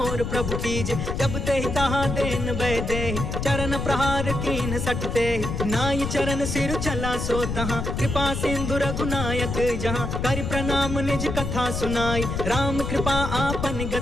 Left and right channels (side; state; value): left; noise; rumble, 3 dB below the sound